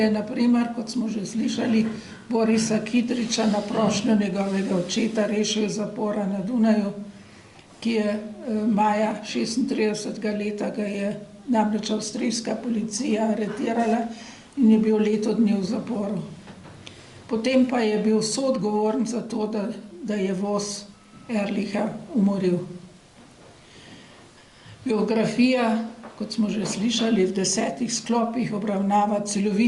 na primer, kot smo že slišali, Borisa Kidriča na prošnjo njegovega očeta rešil iz zapora na Dunaju, ki je maja 36. leta ga je namreč avstrijska policija aretirala in je bil leto dni v zaporu. Potem pa je bil soodgovoren za to, da je voz Ehrlicha umoril. Biografija, kot smo že slišali, v 10 sklopih obravnava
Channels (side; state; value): both; identical; correlation 1.00